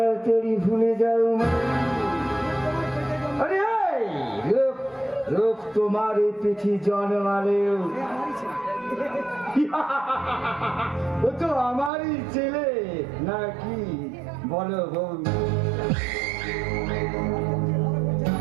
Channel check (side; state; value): left; drops out; at 11.9 s